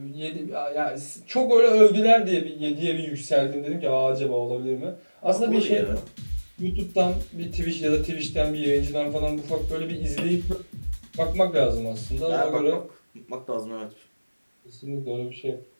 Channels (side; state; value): both; inverted; correlation -1.00